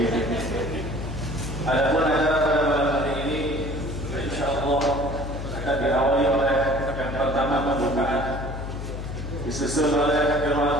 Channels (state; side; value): noise; left; hum, 6 dB below the sound